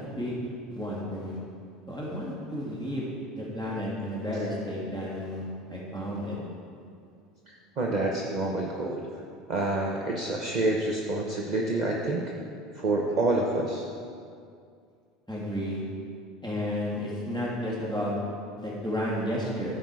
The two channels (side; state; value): both; normal; correlation 0.45